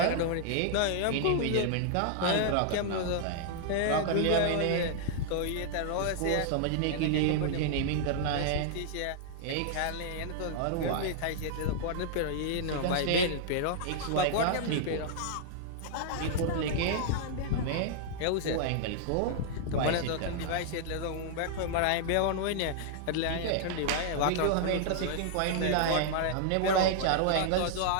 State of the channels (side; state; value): both; different; correlation -0.01